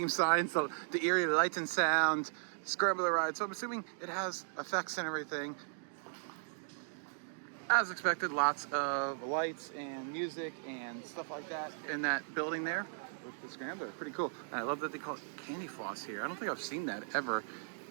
signs, the eerie light and sound, Scrambler ride. So I'm assuming it has effects and everything. As expected, lots of lights and music and stuff like that in that building there with the scrambler. Pretty cool. And I love that they call it candy floss here. I don't think I've seen that ever,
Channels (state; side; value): silent; left; digital silence